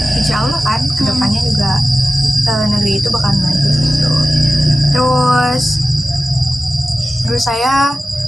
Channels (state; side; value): normal; both; correlation 0.94